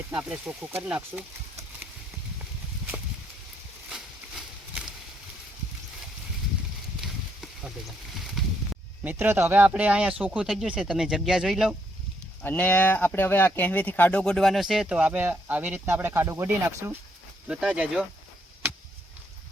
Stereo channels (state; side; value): normal; both; correlation 0.74